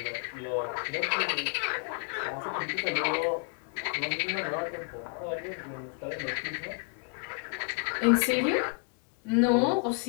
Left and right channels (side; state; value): right; quieter; 39.4 dB